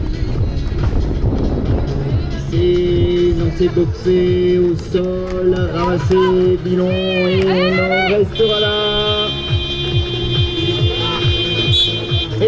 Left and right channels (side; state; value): both; identical; correlation 1.00